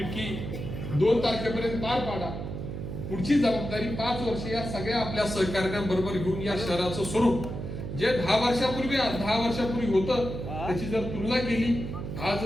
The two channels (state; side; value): noise; right; hum, 6 dB below the sound